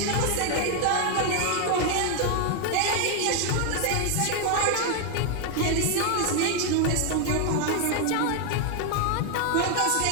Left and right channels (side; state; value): both; different; correlation 0.01